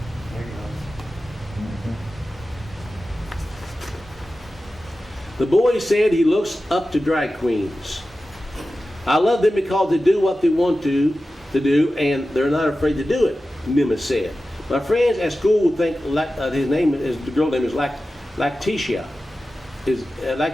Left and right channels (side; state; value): both; normal; correlation 0.94